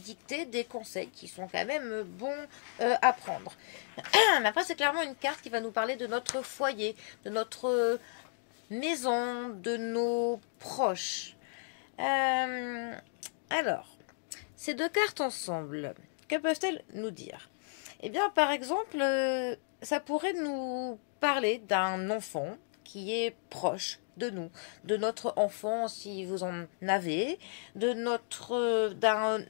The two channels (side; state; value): right; silent; digital silence